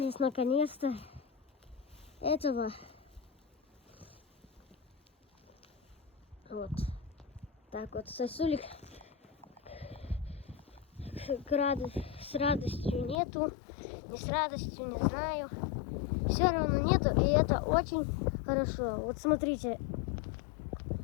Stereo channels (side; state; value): right; drops out; at 13.2 s